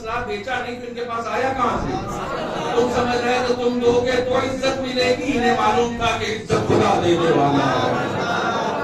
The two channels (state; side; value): identical; both; correlation 1.00